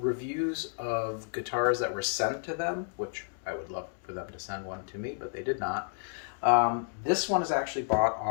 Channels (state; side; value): silent; right; digital silence